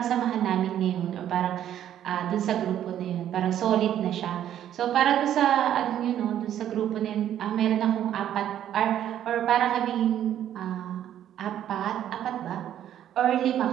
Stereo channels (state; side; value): quieter; left; 10.9 dB